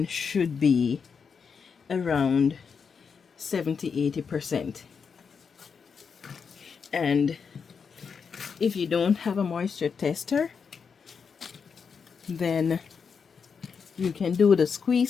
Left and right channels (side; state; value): right; quieter; 6.0 dB